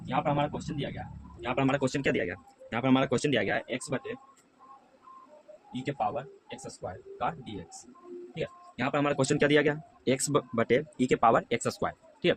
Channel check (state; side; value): identical; both; correlation 1.00